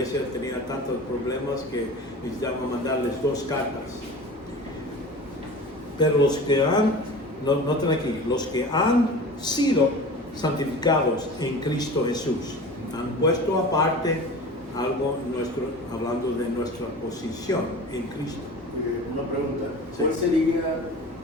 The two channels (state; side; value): normal; both; correlation 0.36